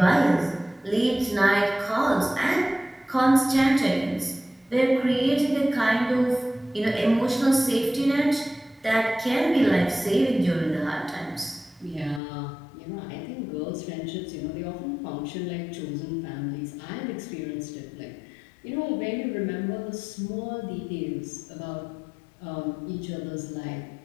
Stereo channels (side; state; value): right; drops out; at 12.2 s